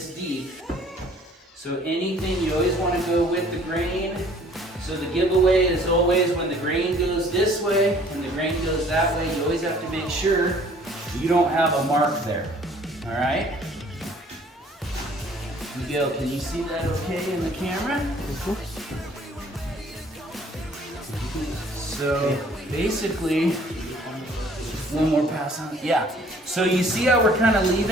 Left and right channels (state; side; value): normal; both; correlation 0.56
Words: deep. So anything, you always want to go with the grain. So the giveaway is always when the grain goes this way and the grain goes that way, you always have to make sure you don't have a mark there. All right? Miguel, can you see that okay in the camera? So basically, one more pass on. Yeah. So you see how we're kind of